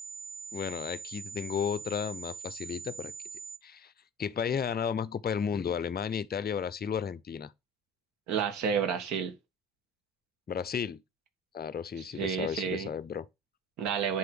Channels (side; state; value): both; normal; correlation 0.38